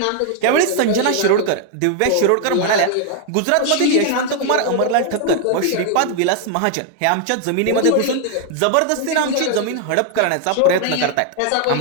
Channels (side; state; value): both; different; correlation 0.00